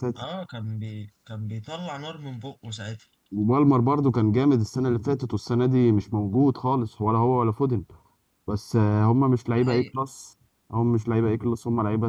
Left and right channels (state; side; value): identical; both; correlation 1.00